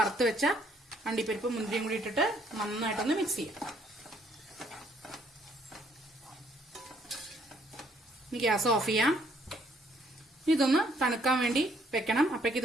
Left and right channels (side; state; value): both; normal; correlation 0.66